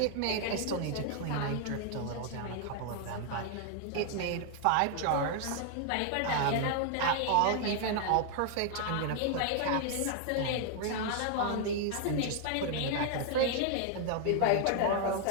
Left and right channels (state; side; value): different; both; correlation 0.00